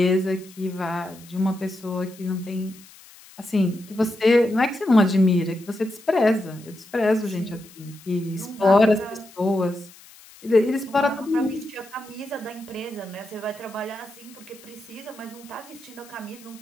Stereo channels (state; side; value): noise; left; hiss, 22 dB below the sound